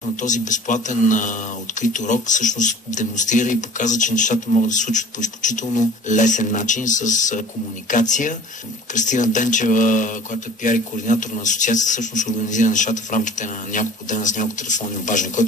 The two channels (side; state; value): both; normal; correlation 0.47